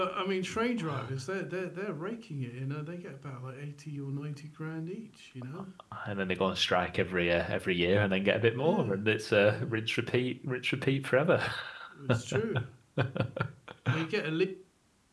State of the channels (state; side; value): identical; both; correlation 1.00